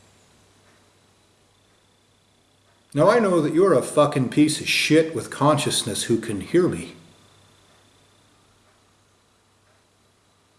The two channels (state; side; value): identical; both; correlation 1.00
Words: Now I know that you're a fucking piece of shit with consciousness who can hear me.